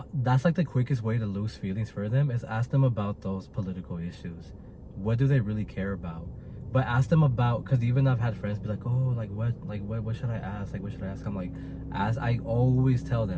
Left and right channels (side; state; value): both; identical; correlation 1.00